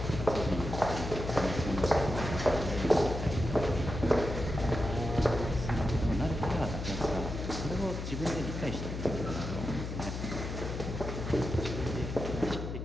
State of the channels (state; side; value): noise; left; hum, 5 dB below the sound